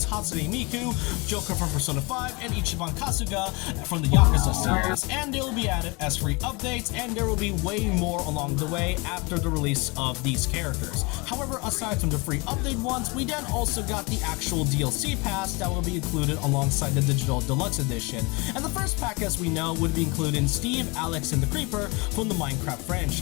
Hatsune Miku, Joker from Persona 5, and Ichiban Kasuga from the Yakuza series, and they will be added as free updates, and there will be way more along the way after the release of these characters. However, aside from the free update ones, we then also got the actual DLC pass that will be included alongside the digital Deluxe Edition, and the first pack, as we know, would be including Steve, Alex, and the Creeper from the Minecraft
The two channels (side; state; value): right; quieter; 27.7 dB